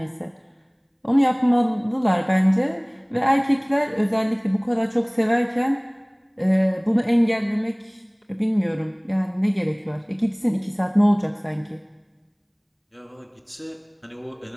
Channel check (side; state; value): both; identical; correlation 1.00